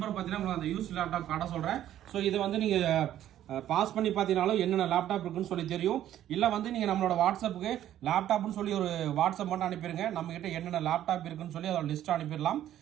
பாத்தீங்கன்னா உங்களுக்கு அந்த யூஸ்டு லேப்டாப் காட்ட சொல்றேன். ஸோ இது வந்து நீங்க பாஸ் பண்ணி பார்த்தீங்கனாலும் என்னென்ன லேப்டாப் இருக்குன்னு சொல்லி தெரியும். இல்லை வந்து நீங்கள் நம்மளோட வாட்ஸ்அப்புக்கு லேப்டாப்னு சொல்லி ஒரு வாட்ஸ்அப் மட்டும் அனுப்பிடுங்க. நம்ம கிட்ட என்னென்ன லேப்டாப் இருக்குன்னு சொல்லி அதோட லிஸ்ட் அனுப்பிடலாம்.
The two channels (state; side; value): quieter; left; 11.9 dB